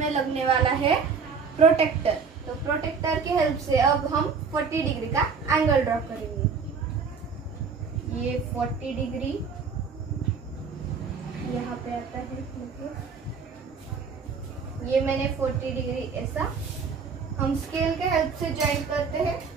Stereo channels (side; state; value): left; quieter; 5.5 dB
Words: लगने वाला है प्रोटेक्टर। तो प्रोटेक्टर की हेल्प से अब हम 40 डिग्री का एंगल ड्रॉ करेंगे। ये 40 डिग्री यहाँ पे आता है। ये मैंने 40 डिग्री ऐसा हम स्केल के हेल्प से ज्वाइन करते हैं।